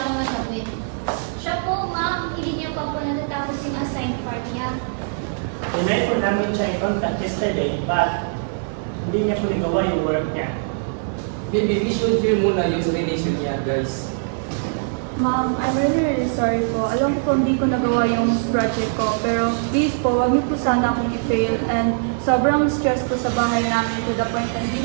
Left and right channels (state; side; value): silent; left; digital silence